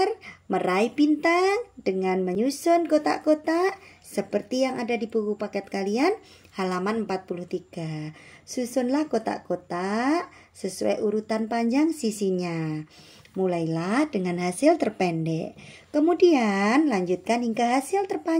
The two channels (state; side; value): identical; both; correlation 1.00